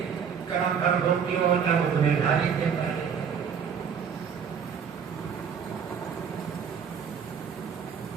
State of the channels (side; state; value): left; quieter; 7.0 dB